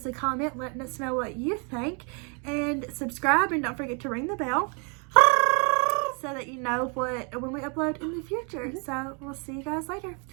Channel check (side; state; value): left; quieter; 35.9 dB